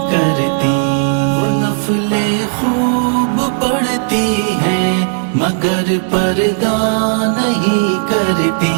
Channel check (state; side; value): silent; left; digital silence